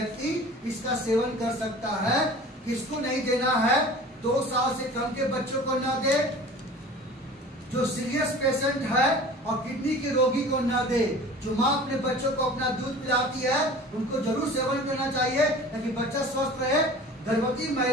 इसका सेवन कर सकता है। किसको नहीं देना है? 2 साल से कम के बच्चों को ना दे, जो सीरियस पेशेंट है और किडनी के रोगी को ना दे। जो माँ अपने बच्चों को अपना दूध पिलाती है उनको जरूर सेवन करना चाहिए ताकि बच्चा स्वस्थ रहे। गर्भवती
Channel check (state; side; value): normal; both; correlation 0.41